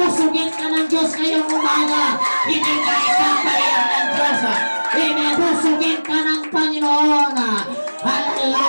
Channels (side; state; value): both; inverted; correlation -1.00